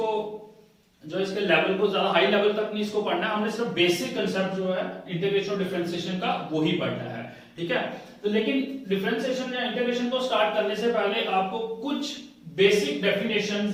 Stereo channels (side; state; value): both; identical; correlation 1.00